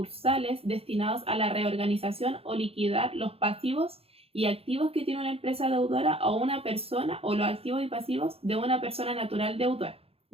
destinados a la reorganización o liquidar los pasivos y activos que tiene una empresa deudora o una persona, o los activos y pasivos de una persona natural deudora.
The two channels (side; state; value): left; late; 0.28 ms